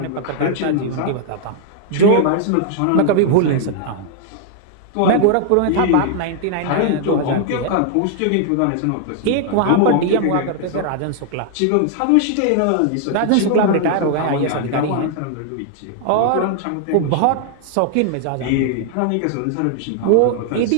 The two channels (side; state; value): both; different; correlation 0.00